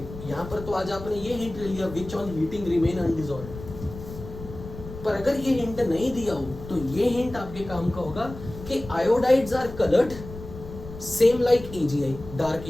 यहां पर तो आज आपने ये हिंट ले लिया, विच ऑन हीटिंग रिमेन अनडिसॉल्व्ड। पर अगर ये हिंट नहीं दिया हो तो ये हिंट आपके काम का होगा कि iodides are coloured same like AgI, dark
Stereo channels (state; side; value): noise; left; rumble, 13 dB below the sound